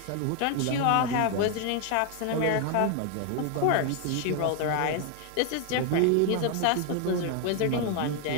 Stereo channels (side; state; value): both; different; correlation 0.01